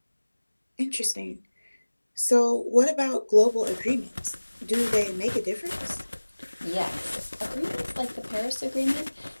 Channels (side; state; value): both; inverted; correlation -1.00